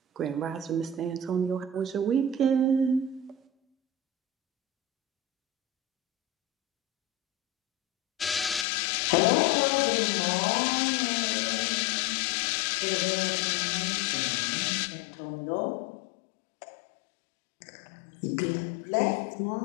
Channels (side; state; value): right; drops out; at 8.7 s